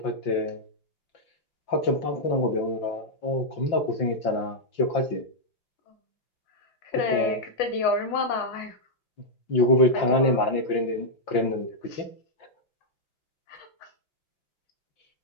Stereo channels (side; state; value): right; late; 5.8 ms